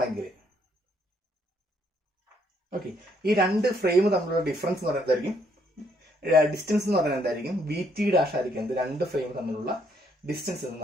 ഓക്കെ, ഈ രണ്ട് ഫ്രെയിം തമ്മിലുള്ള ഡിഫറൻസ് എന്ന് പറയുന്നതായിരിക്കും ഡിസ്റ്റൻസ് എന്ന് പറയുന്നത് എന്തായിരിക്കും, വി ടി ഡാഷ് ആയിരിക്കും എന്ത്, രണ്ട് ഫ്രെയിം തമ്മിലുള്ള ഡിസ്റ്റൻസ് എന്ന്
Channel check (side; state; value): both; normal; correlation 0.70